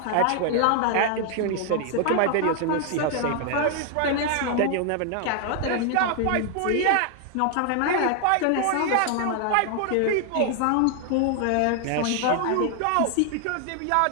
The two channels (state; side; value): different; both; correlation 0.00